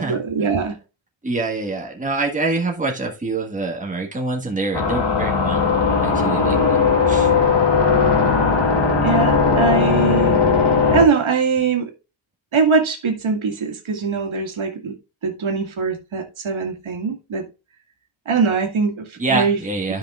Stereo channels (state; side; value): normal; both; correlation -0.11